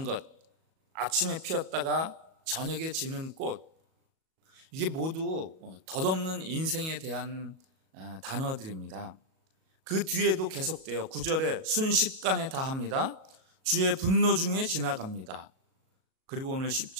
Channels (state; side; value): late; left; 37 ms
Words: 것, 아침에 피었다가 저녁에 지는 꽃, 이게 모두 덧없는 인생에 대한 단어들입니다. 그 뒤에도 계속돼요. 9절에 순식간에 다합니다. 주의 분노 중에 지나갑니다. 그리고 오늘